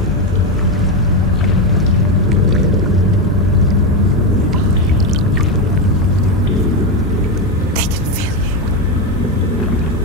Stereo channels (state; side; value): normal; both; correlation 0.11